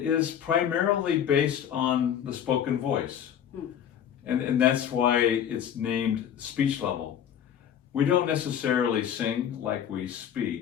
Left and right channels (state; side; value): quieter; right; 9.3 dB